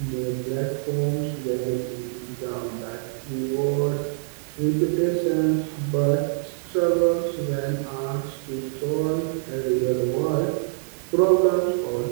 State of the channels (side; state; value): left; silent; digital silence